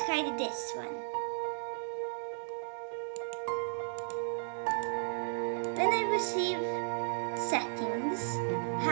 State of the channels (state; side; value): silent; left; digital silence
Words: hide this one. When I receive settings,